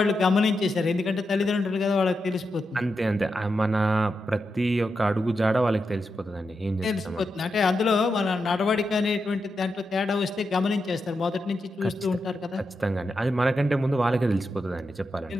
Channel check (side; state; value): both; normal; correlation 0.87